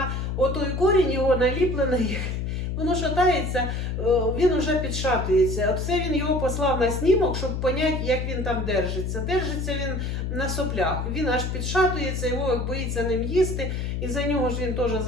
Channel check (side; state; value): left; noise; hum, 2 dB below the sound